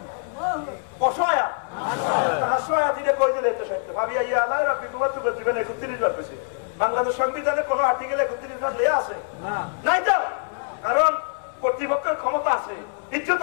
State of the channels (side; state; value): right; silent; 62 dB below the other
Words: অসহায়া হাসুয়া দিলে কই দিলে তো সত্য ভাবি আইয়া আল্লাহ রাব্বি তোমার তো জীবনে 31 বার পেয়েছি বাংলাদেশ সংবিধানে কোন আর্টিকেলে 31 বার দেয়া আছে নাই তো কারণ কর্তৃপক্ষের ক্ষমতা আছে ইজ্জত